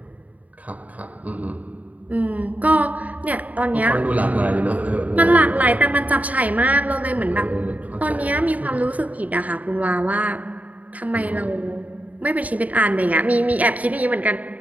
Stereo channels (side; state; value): left; late; 0.073 ms